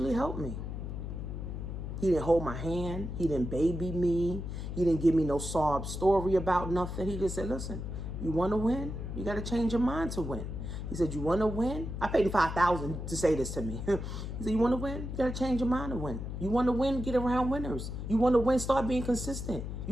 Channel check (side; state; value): left; noise; hum, 6 dB below the sound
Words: helped me. He didn't hold my hand. He didn't baby me. He didn't give me no sob story about nothing. He just said, listen, you want to win? You got to change your mind to win. He said, you want to win? I paid him $5,000 to say this to me. He said, you want to win? You got to change your mind to win. You want to win? Get around winners. You want to win? Start being consistent.